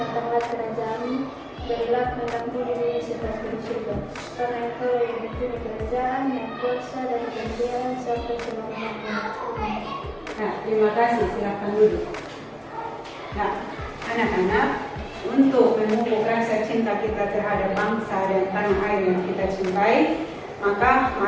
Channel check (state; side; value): identical; both; correlation 1.00